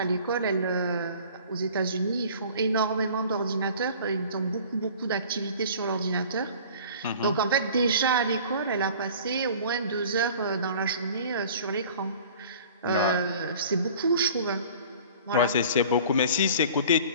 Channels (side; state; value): both; inverted; correlation -0.45